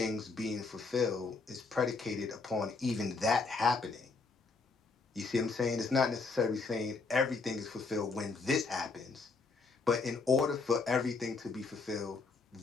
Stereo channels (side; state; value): right; quieter; 4.2 dB